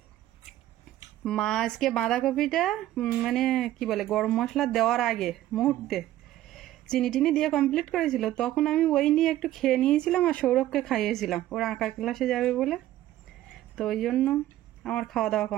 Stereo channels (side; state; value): left; quieter; 14.1 dB